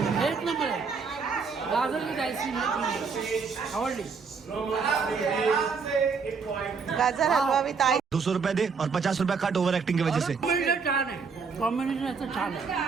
एक नंबर आहे. गाजर विथ आईस्क्रीम आवडली. गाजर हलवा विथ आई. 200 रुपए दे और 50 रुपए कट ओवर एक्टिंग की वजह से. कॉम्बिनेशन छान आहे, कॉम्बिनेशन याचं छान आहे.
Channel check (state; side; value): quieter; left; 5.3 dB